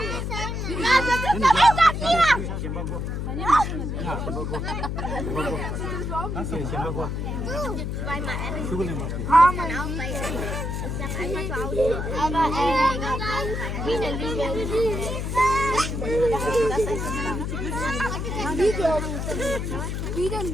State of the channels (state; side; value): noise; left; hum, 3 dB below the sound